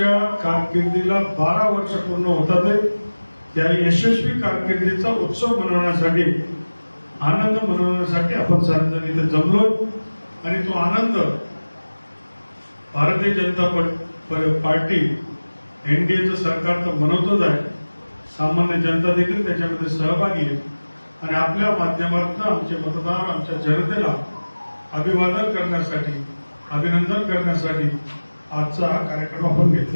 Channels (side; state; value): both; inverted; correlation -1.00